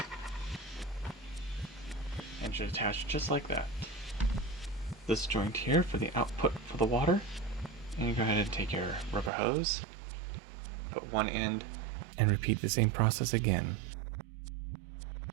it should attach just like that. This joint here for the output for the water, and you go ahead and take your rubber hose, put one end, and repeat the same process again.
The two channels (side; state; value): left; drops out; at 9.3 s